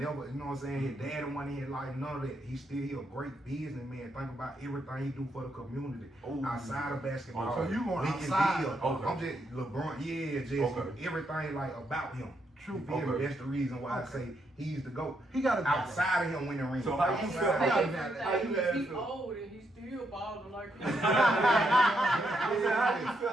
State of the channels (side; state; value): both; normal; correlation 0.78